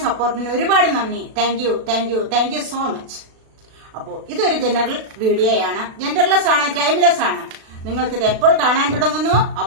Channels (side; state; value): left; late; 36 ms